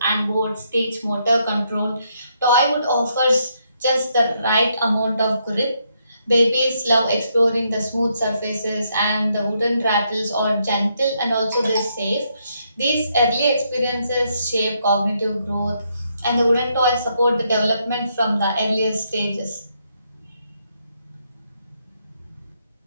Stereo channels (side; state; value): both; inverted; correlation -0.76